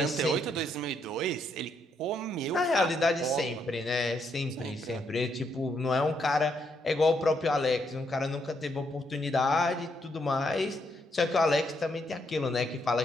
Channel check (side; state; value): both; normal; correlation 0.76